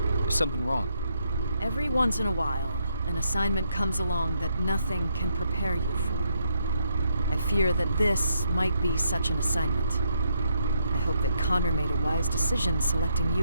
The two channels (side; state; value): both; inverted; correlation -0.76